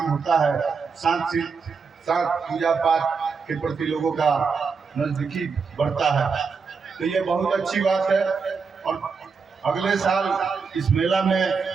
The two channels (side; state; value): left; quieter; 5.3 dB